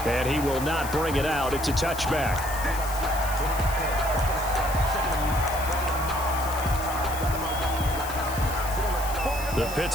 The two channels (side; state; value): left; noise; hiss, 11 dB below the sound